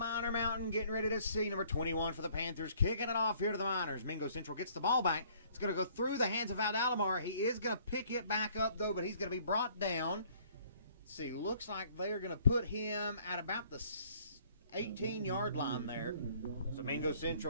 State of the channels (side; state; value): both; inverted; correlation -0.59